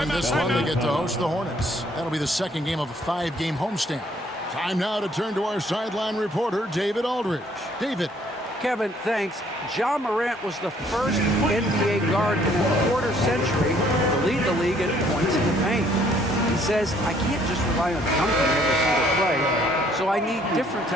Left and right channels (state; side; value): normal; both; correlation 0.63